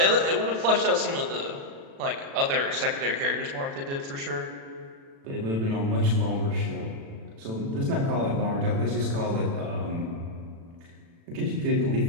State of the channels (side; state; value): left; late; 36 ms